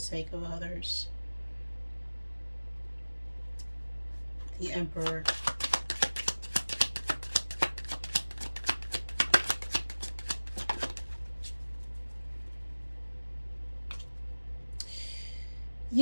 of others. The Emperor.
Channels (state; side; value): inverted; both; correlation -1.00